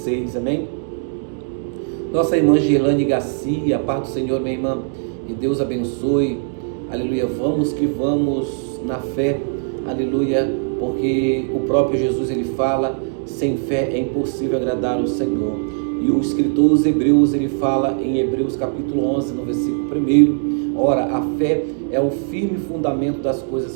amém? Nossa irmã Girlane Garcia, a paz do Senhor, minha irmã, que Deus abençoe, aleluia. Vamos que vamos na fé, aleluia, porque o próprio Jesus, ele fala, sem fé é impossível agradar o Senhor. E o escritor dos Hebreus, ele fala em Hebreus capítulo 11, no versículo 1, Ora, a fé é o firme fundamento das coisas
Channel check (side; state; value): left; silent; digital silence